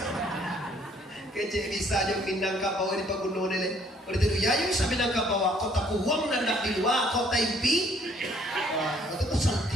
Kece bisa aja Minangkabau di pagunungan ini. Kalau itu ya yang bisa Minangkabau kota kuwang nandak di luar kota impi. Wah, itu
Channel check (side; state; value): both; normal; correlation 0.62